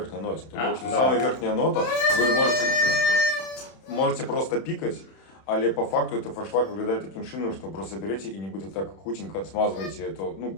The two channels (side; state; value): right; late; 31 ms